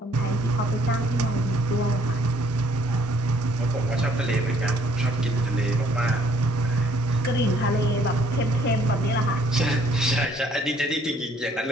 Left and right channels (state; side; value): normal; both; correlation 0.63